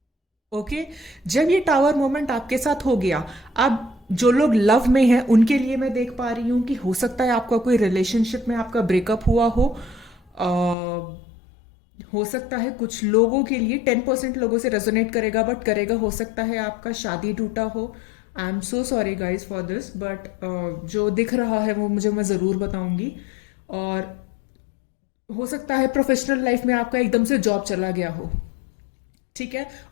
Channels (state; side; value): drops out; right; at 10.8 s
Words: ओके, जब ये टावर मोमेंट आपके साथ हो गया, अब जो लोग लव में हैं उनके लिए मैं देख पा रही हूं कि हो सकता है आपका कोई रिलेशनशिप में आपका ब्रेकअप हुआ हो सकता है कुछ लोगों के लिए 10% लोगों से रेजोनेट करेगा, बट करेगा। हो सकता है आपका शादी टूटा हो। I am so sorry guys for this, but जो दिख रहा है वो मैं ज़रूर बताऊंगी। और हो सकता है प्रोफेशनल लाइफ में आपका एकदम से जॉब चला गया हो। ठीक है,